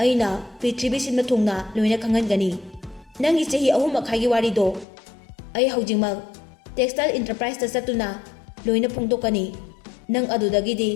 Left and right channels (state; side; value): drops out; right; at 4.9 s